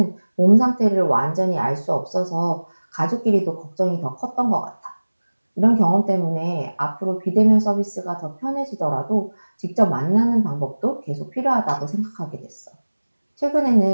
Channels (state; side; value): inverted; both; correlation -1.00